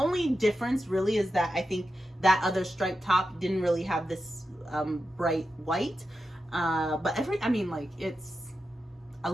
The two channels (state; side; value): normal; both; correlation 0.90